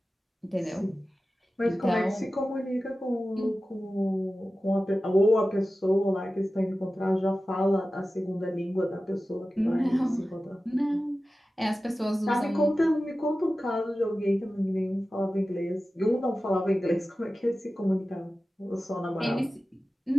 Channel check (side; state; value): both; normal; correlation 0.95